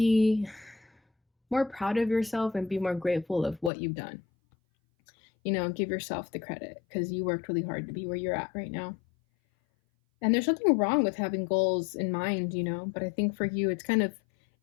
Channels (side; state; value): right; drops out; at 3.7 s